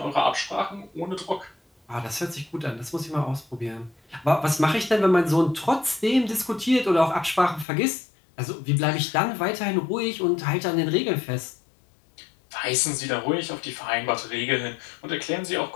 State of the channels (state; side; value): drops out; right; at 7.7 s